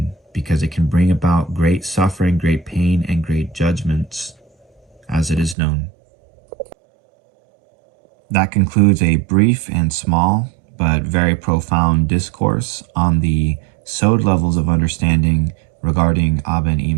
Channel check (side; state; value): left; drops out; at 5.6 s